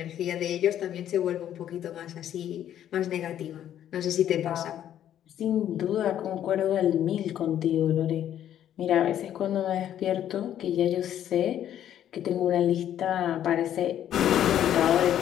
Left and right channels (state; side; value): quieter; right; 10.8 dB